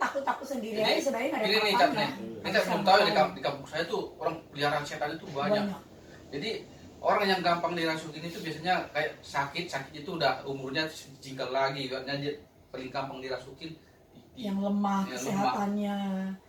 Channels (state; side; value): identical; both; correlation 1.00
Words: sendiri aja sebenarnya nggak ada Ini nih apa-apanya. capnya. Ini saya belum tahu ya, di kampung saya tuh orang peliharaan setan itu banyak. Jadi orang yang gampang dirasukin itu biasanya kayak sakit itu udah umurnya jinggal lagi, karena dia paling gampang dirasukin. Yang lemah Yang kesehatannya,